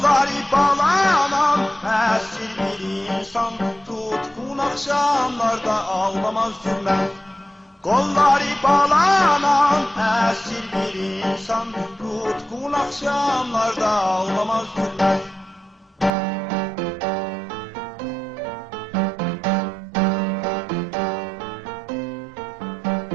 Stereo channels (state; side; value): drops out; left; at 16.1 s